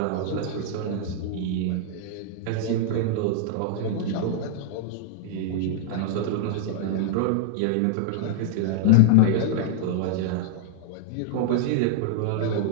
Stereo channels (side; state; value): both; different; correlation -0.01